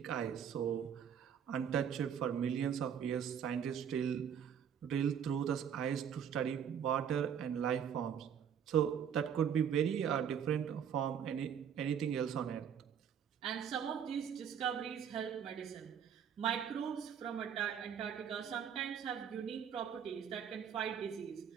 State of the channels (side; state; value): left; quieter; 8.2 dB